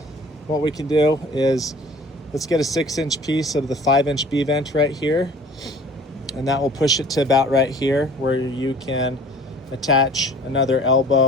what we can do is let's get a 6-inch piece of the 5-inch B vent right here, and that will push it to about right here where you can attach another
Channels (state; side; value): normal; both; correlation 0.48